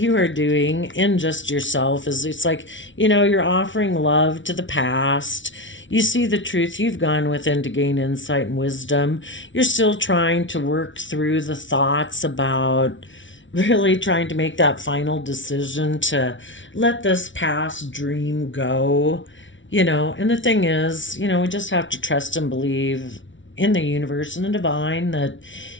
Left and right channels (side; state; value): right; late; 0.56 ms